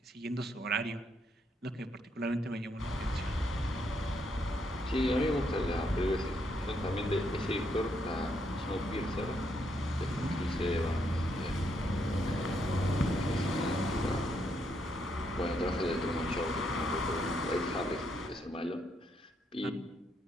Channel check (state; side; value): normal; both; correlation 0.76